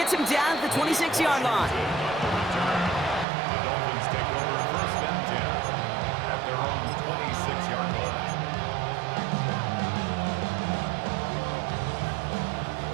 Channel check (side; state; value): left; drops out; at 3.2 s